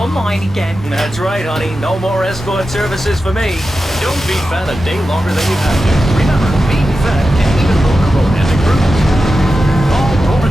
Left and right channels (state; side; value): normal; both; correlation 0.92